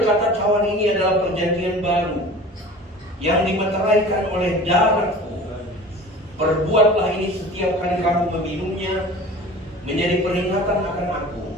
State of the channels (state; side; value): normal; both; correlation 0.40